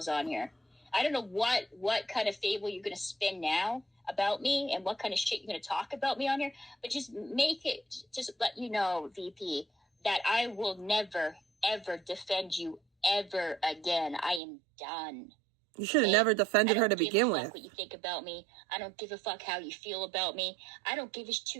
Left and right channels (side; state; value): left; drops out; at 14.4 s